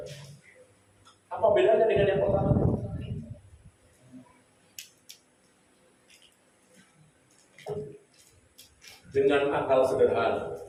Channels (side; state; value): both; identical; correlation 1.00